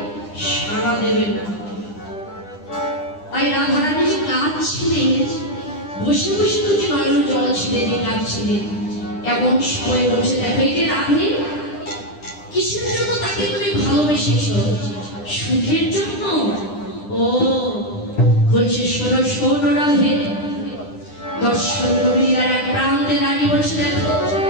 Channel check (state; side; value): late; right; 9.9 ms